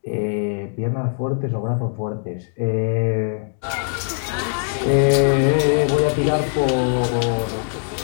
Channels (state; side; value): silent; right; digital silence